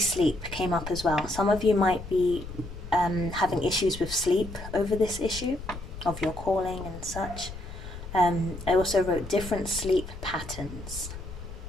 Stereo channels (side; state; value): left; noise; rumble, 11 dB below the sound